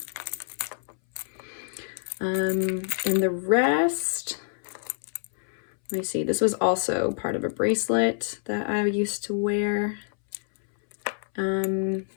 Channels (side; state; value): right; silent; 60 dB below the other